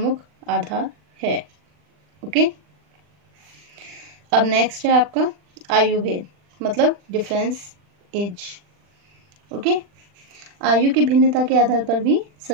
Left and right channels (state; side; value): late; left; 40 ms